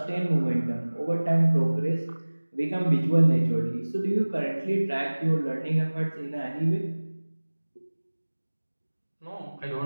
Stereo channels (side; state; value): both; inverted; correlation -1.00